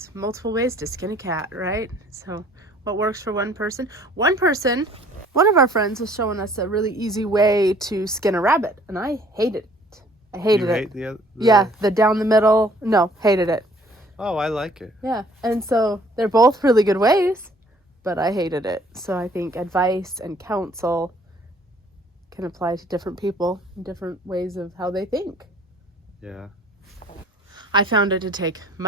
multiple ways to skin a cat, right? So what works for one person? One of our friends was showing us a really easy way to skin a rabbit, and I hated it. I hated it. You hate Yeah, the down the middle. No, hated it. Oh, I like it. Yeah, and so they're both really good ways, but I hated it. So I think advice and counsel can apply to different people, different ways of how they think. Yeah. I found it to take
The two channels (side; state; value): both; normal; correlation 0.57